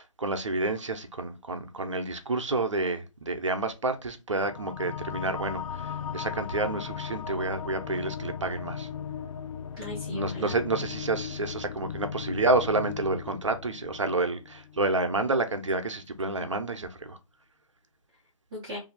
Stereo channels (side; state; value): both; normal; correlation -0.19